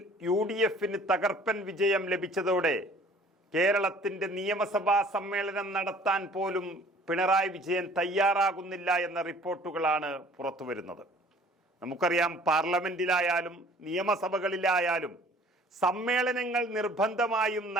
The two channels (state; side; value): normal; both; correlation 0.52